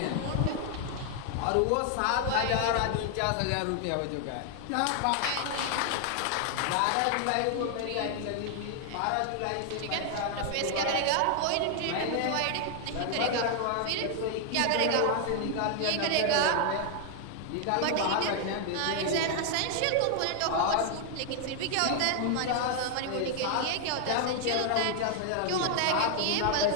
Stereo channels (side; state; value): both; different; correlation 0.00